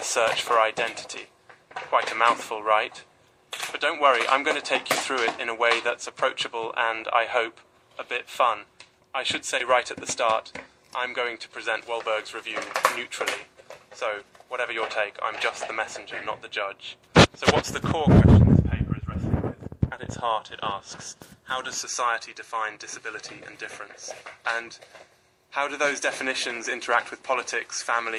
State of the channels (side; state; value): both; identical; correlation 1.00